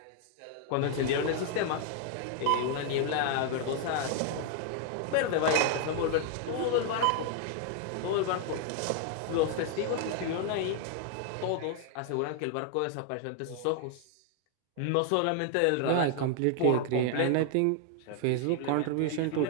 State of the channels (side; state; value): both; different; correlation 0.00